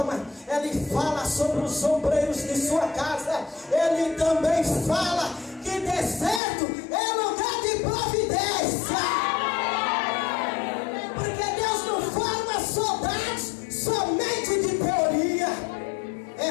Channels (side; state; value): right; drops out; at 6.4 s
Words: Ele fala sobre os obreiros de sua casa. Ele também fala que deserto é lugar de providência, porque Deus não forma soldados somente de teoria. É